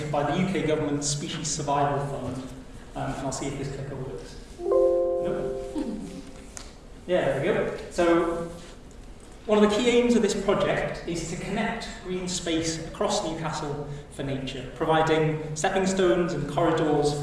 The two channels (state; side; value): identical; both; correlation 1.00